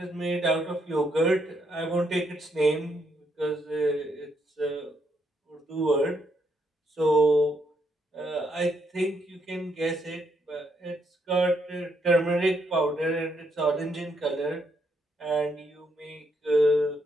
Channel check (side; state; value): both; normal; correlation 0.76